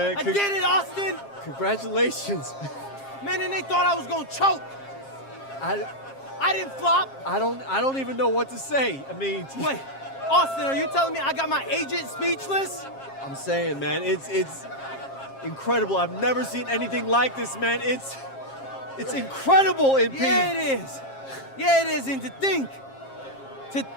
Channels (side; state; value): right; late; 7.4 ms